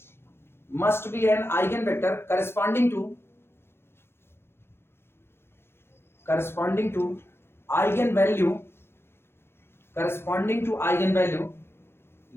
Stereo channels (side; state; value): right; late; 0.12 ms